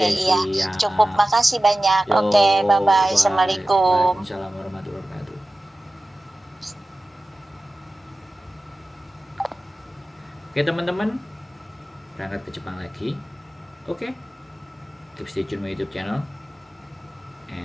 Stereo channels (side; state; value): both; normal; correlation 0.95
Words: iya. Cukup, makasih banyak. Oke, bye-bye. Assalamualaikum. Waalaikumsalam warahmatullahi wabarakatuh. Oke teman-teman, berangkat ke Jepang lagi. Oke, keep stay tune my YouTube channel